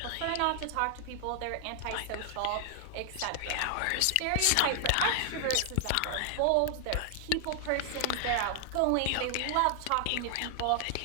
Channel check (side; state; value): both; different; correlation 0.00